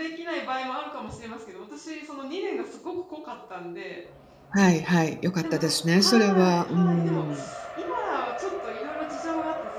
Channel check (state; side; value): identical; both; correlation 1.00